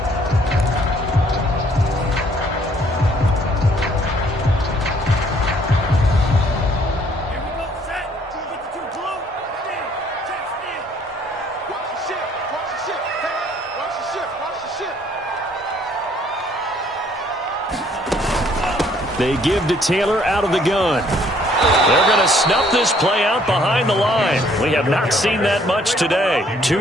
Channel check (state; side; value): normal; both; correlation 0.63